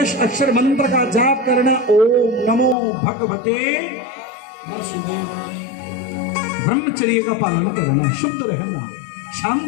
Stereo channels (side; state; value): right; drops out; at 2.8 s